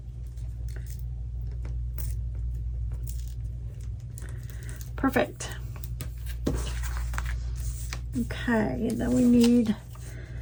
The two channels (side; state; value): both; identical; correlation 1.00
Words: Perfect. Okay, and then we need